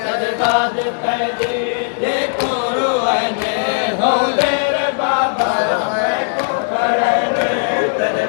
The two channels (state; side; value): silent; right; digital silence